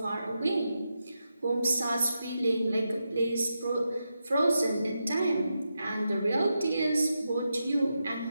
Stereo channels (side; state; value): both; inverted; correlation -0.87